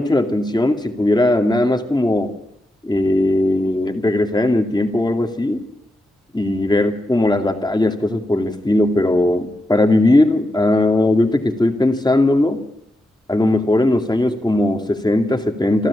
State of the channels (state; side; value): normal; both; correlation 0.87